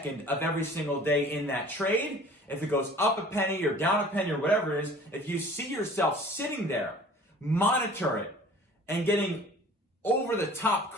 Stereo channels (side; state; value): both; normal; correlation 0.47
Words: of every single day in that trade, if it goes up a penny or down a penny or whatever it is, if you see yourself sitting there, monitor it and getting over the top